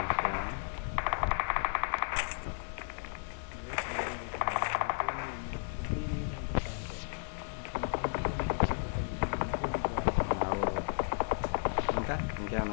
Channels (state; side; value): silent; right; digital silence